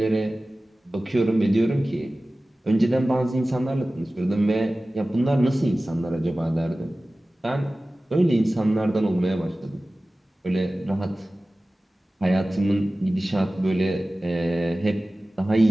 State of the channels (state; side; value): normal; both; correlation 0.97